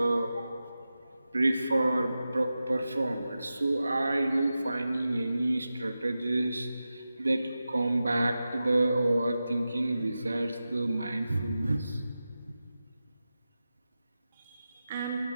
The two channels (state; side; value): inverted; both; correlation -0.93